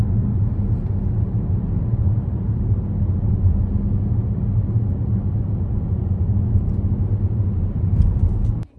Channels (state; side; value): identical; both; correlation 1.00